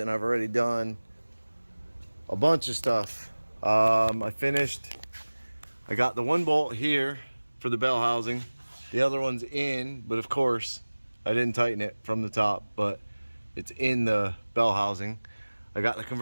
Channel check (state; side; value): inverted; both; correlation -1.00